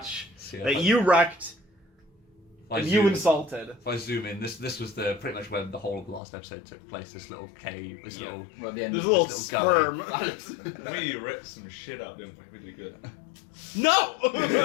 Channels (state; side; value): drops out; right; at 6.2 s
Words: That you wrecked and you insulted. If I zoom in, this was the pretty much where the whole of the last episode took place. This little cave, this little. Well, at the end There's a of little this sperm. We ripped some shit out, didn't we? Really good. No!